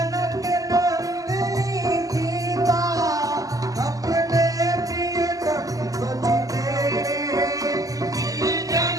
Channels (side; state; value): left; late; 0.17 ms